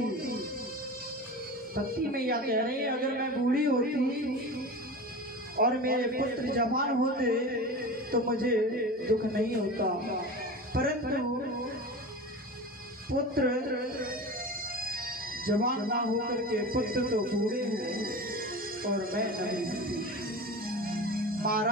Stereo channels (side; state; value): both; normal; correlation 0.30